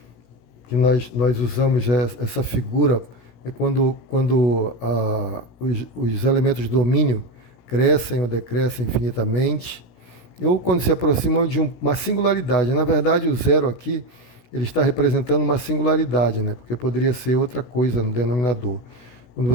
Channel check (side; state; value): right; late; 17 ms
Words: que nós usamos, essa figura, é quando os elementos do domínio crescem ou decrescem infinitamente, ou quando se aproximam de uma singularidade. Na verdade, o zero aqui ele está representando uma singularidade, né? Porque poderia ser outra coisa no denominador. Quando